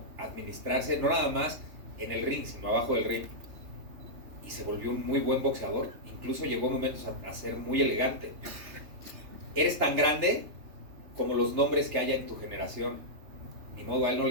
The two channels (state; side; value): late; left; 3.3 ms